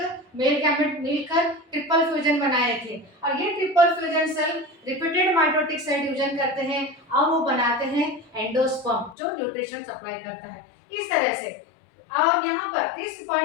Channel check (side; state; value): right; drops out; at 9.2 s